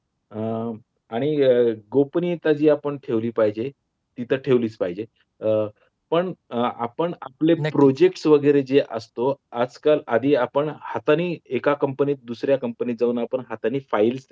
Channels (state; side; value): identical; both; correlation 1.00